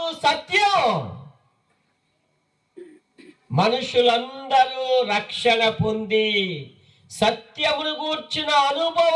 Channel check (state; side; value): identical; both; correlation 1.00